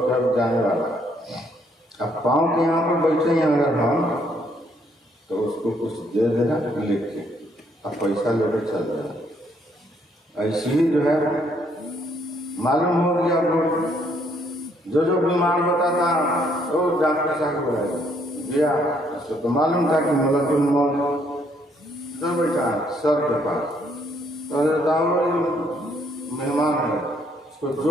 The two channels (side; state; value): both; normal; correlation 0.69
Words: कब जाने वाला। अब पाँव के यहाँ पर बैठे हैं अगर हम, तो उसको कुछ दे देना लिख के, अब पैसा लेकर चल जाना। ऐसे ही जो है मालूम हो गया, वो जो बीमार होता था वो डॉक्टर साहब को गया, उसको तो मालूम था कि मलकुल मौत तो बैठा सर के पास, तो मेहमान है, उसको